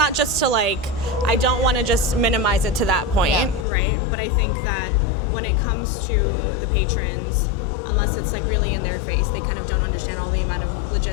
just to I don't want to just minimize it to that point, right? But I think that when it comes to the patrons, unless it's really in their face, they kind of don't understand all the amount of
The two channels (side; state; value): right; drops out; at 3.7 s